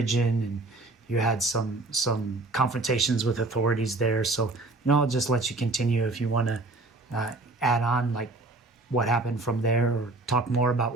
and you had some confrontations with authorities there. So I'll just let you continue if you want to add on like what happened from there, or talk more about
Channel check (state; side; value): quieter; left; 3.1 dB